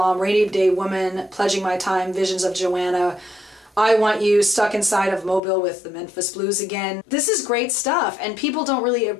Rainy Day Woman, Pledging My Time, Visions of Joanna, I Want You, Stuck Inside of Mobile with the Memphis Blues Again. This is great stuff, and people don't really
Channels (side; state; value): right; drops out; at 5.4 s